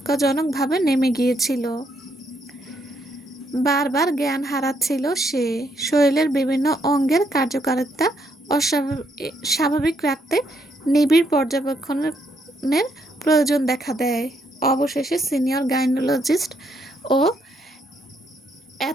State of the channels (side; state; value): both; normal; correlation 0.74